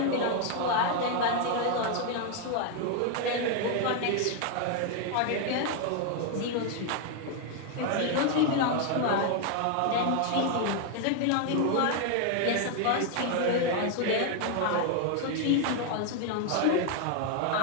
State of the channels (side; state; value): both; different; correlation 0.01